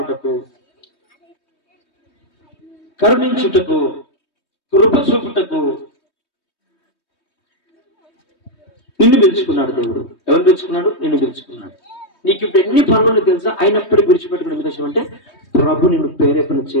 కరుణించుటకు, కృప చూపుటకు నిన్ను పిలుచుకున్నాడు దేవుడు. ఎవరు పిలుచుకున్నాడు? నిన్ను పిలుచుకున్నాడు. నీకు ఇప్పుడు ఎన్ని పనులు తెలుసా? అయినప్పటికీ విడిచిపెట్టుకునే ఉద్దేశం అంటే ప్రభు నిన్ను ప్రేరేపణ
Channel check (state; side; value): late; right; 3.2 ms